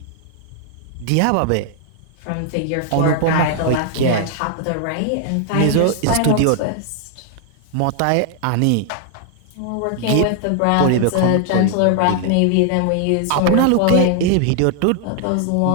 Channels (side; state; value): both; different; correlation 0.00